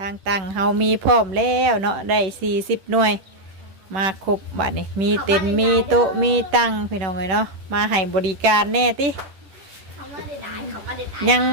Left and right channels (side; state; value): left; late; 10 ms